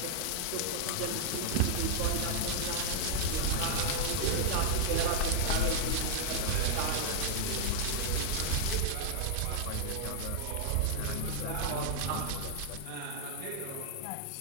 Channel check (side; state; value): both; different; correlation -0.01